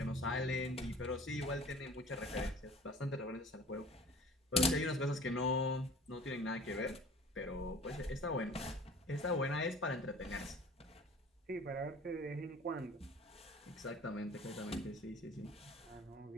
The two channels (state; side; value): normal; both; correlation 0.46